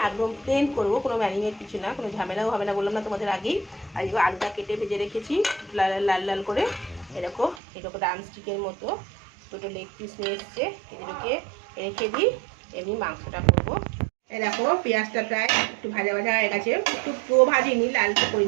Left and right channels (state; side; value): drops out; left; at 7.6 s